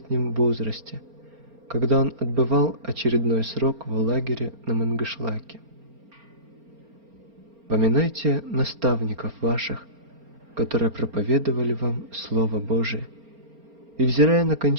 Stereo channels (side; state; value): left; late; 4.3 ms